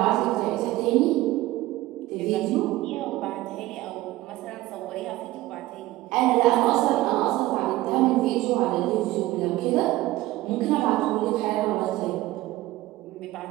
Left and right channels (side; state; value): left; quieter; 17.2 dB